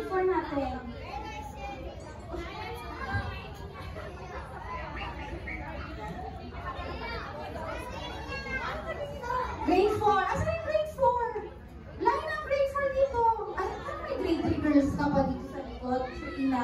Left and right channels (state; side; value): identical; both; correlation 1.00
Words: 4 natin? Grade 4. Asan yung grade 4? Line ng grade 4 dito. Ay, may grade 3 girls ka pa dito sa likod? So,